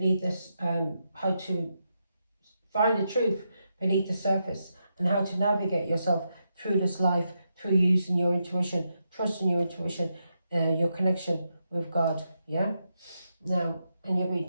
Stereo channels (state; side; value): inverted; both; correlation -0.84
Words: this how to find the truth beneath the surface, and how to navigate yourself through this life through using your intuition, trusting your intuition, your connection with God. Yeah. Now, and you're